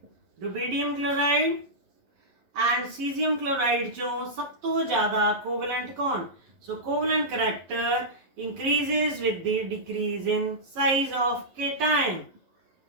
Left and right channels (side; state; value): left; late; 11 ms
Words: rubidium chloride and caesium chloride चो सब तो ज्यादा कोवलेंट कौन? So covalent character increases with the decrease in size of cation.